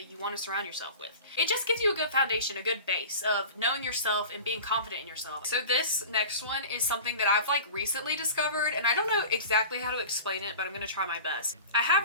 you want to surround yourself with. It just gives you a good foundation, a good base of knowing yourself and being confident in yourself. So this next one is something that I've like recently discovered, and I don't know exactly how to explain it, but I'm gonna try my best. I have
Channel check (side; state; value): both; inverted; correlation -0.36